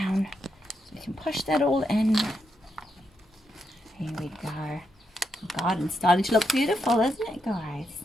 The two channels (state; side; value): normal; both; correlation 0.83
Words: so we can push that all in. Here we go. The garden's starting to look beautiful, isn't it, guys?